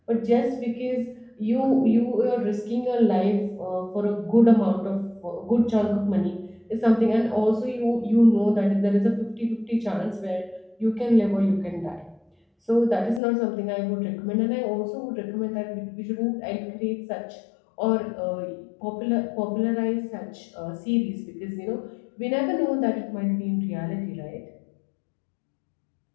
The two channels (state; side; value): drops out; right; at 13.2 s